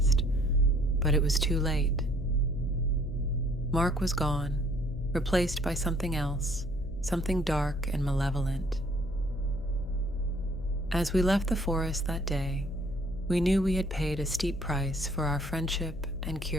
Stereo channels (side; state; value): left; noise; hum, 12 dB below the sound